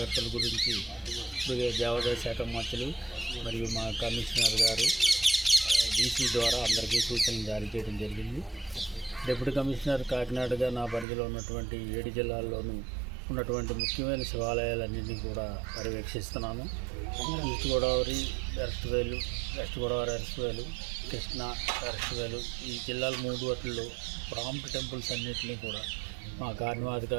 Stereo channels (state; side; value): drops out; left; at 11.1 s